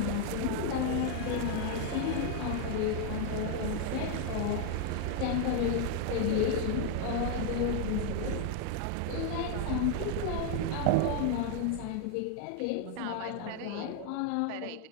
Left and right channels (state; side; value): different; both; correlation 0.00